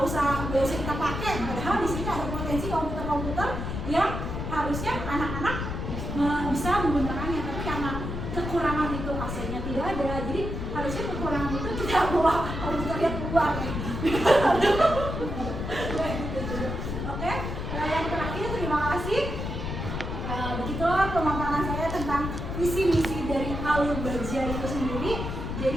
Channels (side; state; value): left; noise; rumble, 4 dB below the sound